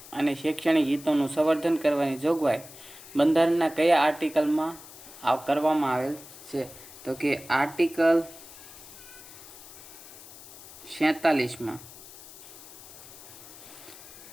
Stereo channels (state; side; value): noise; left; hiss, 17 dB below the sound